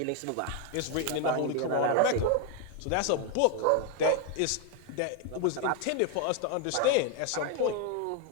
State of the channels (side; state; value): both; different; correlation 0.01